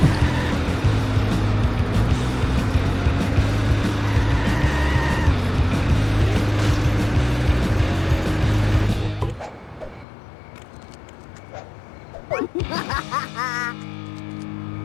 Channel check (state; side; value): drops out; right; at 10.1 s